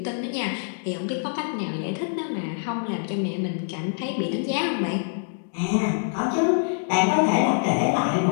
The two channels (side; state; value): right; silent; digital silence